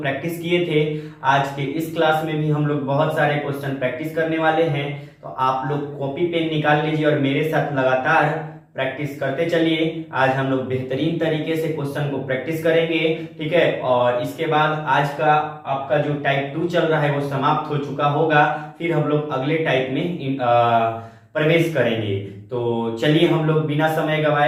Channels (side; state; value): both; identical; correlation 1.00